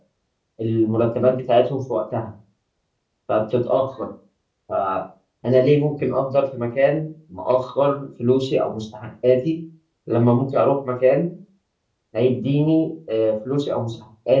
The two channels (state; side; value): identical; both; correlation 1.00